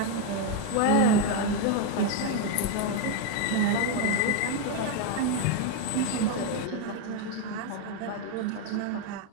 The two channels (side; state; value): both; different; correlation 0.01